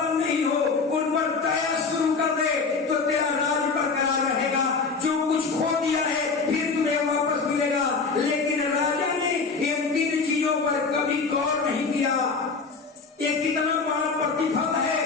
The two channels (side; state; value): right; quieter; 4.6 dB